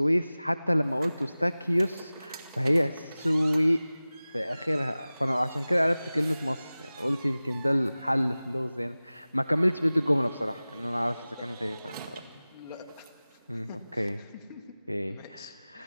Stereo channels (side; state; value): both; inverted; correlation -0.98